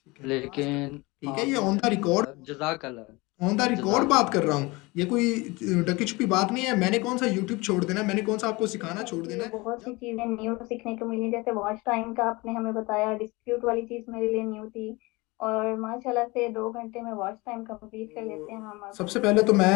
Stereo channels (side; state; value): right; quieter; 23.8 dB